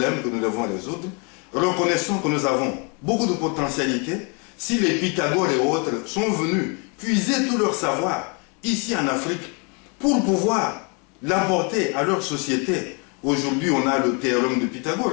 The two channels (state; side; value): quieter; right; 34.3 dB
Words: que nous devons résoudre. Reconnaissons que nous avons beaucoup de potentialités. Si les Pythagore et autres sont venus puiser tout leur savoir ici en Afrique pour pouvoir l'apporter à leur société. Aujourd'hui, on a le théorème de